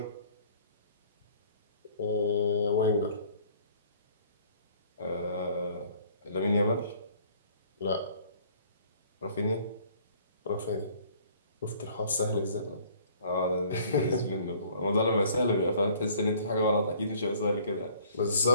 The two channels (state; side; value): inverted; both; correlation -0.56